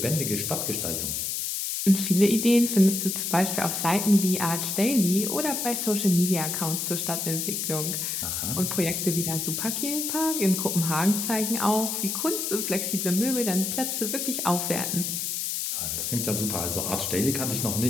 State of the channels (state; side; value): noise; left; hiss, 2 dB below the sound